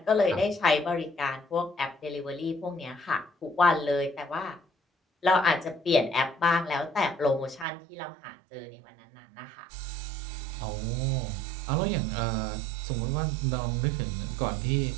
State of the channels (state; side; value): drops out; left; at 7.7 s